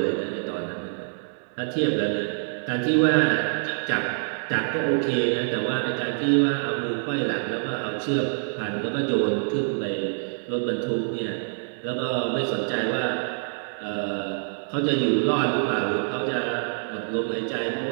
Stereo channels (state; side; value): silent; left; digital silence